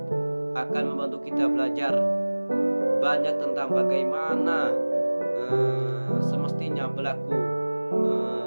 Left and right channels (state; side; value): inverted; both; correlation -1.00